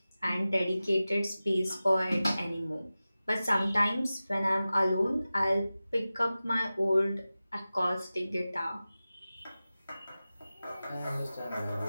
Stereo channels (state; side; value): inverted; both; correlation -0.96